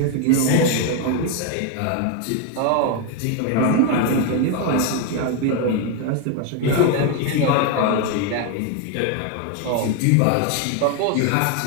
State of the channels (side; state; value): both; different; correlation 0.01